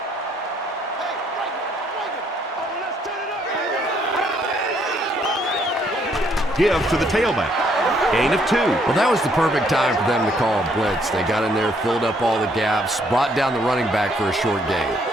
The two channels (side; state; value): both; normal; correlation 0.68